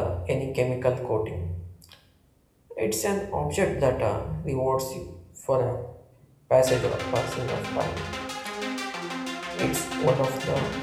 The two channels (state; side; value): identical; both; correlation 1.00